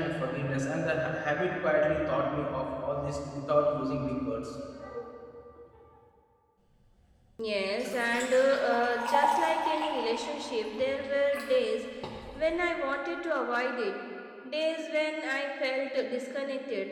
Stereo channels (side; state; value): both; identical; correlation 1.00